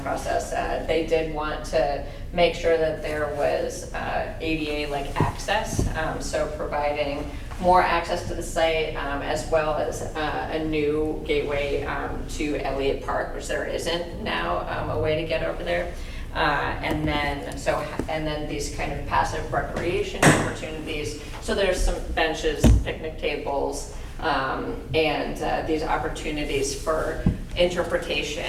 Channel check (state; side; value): identical; both; correlation 1.00